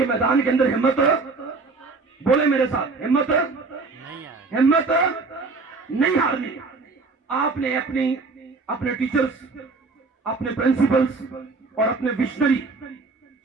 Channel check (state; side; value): quieter; left; 4.0 dB